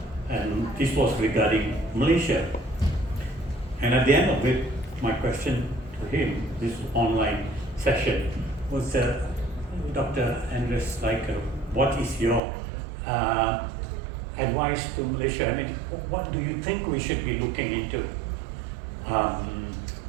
and this was regarding Malaysia. And at the end of it, my question to him, this online session, was Dr. Andres Sliker, what is your advice to Malaysia? I mean, what do you think we should be looking into?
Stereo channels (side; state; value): left; drops out; at 12.4 s